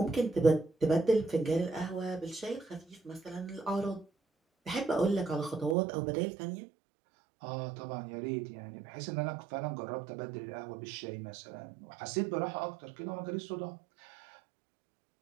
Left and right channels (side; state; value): left; drops out; at 5.8 s